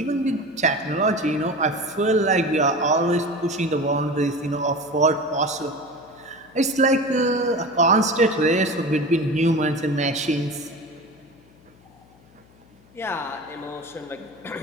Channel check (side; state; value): left; noise; hum, 28 dB below the sound